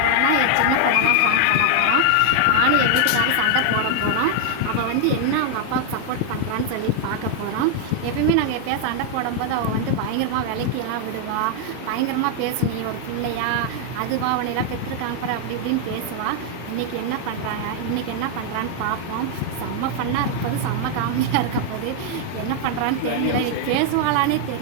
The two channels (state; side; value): different; both; correlation 0.00